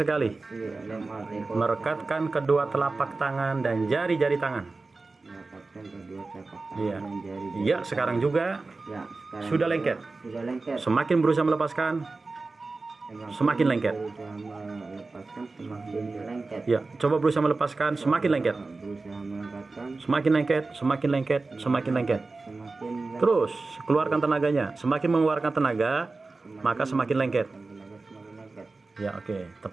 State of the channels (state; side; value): quieter; left; 3.7 dB